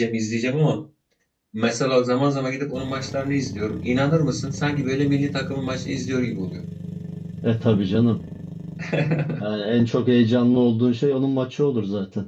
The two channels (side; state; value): both; identical; correlation 1.00